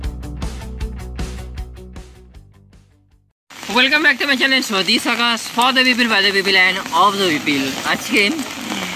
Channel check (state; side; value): identical; both; correlation 1.00